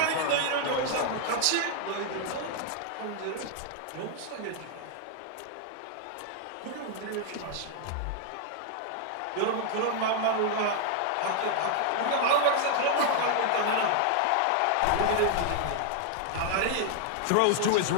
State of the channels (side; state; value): both; different; correlation 0.00